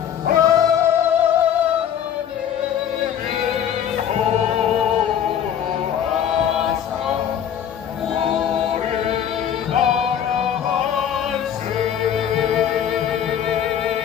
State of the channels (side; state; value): right; quieter; 9.3 dB